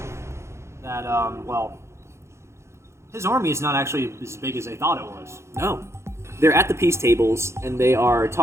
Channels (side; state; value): left; late; 0.13 ms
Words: that his army is not actually as big as they thought it was. no, they're at the peace tables and they are